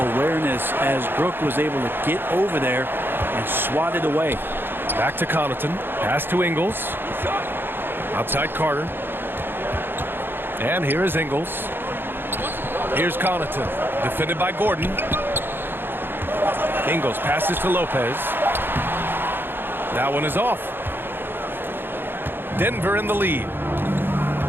awareness as Brook was able to get over there and swat it away. Back to Connaughton. Pass to Ingles. Outside Carter. And here is Ingles. Here's Connaughton. Defended by Gordon. Ingles passes to Lopez. That one is off. Denver in the lead.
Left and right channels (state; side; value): late; left; 0.10 ms